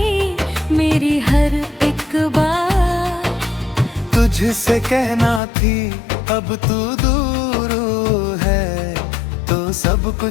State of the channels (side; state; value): right; drops out; at 5.4 s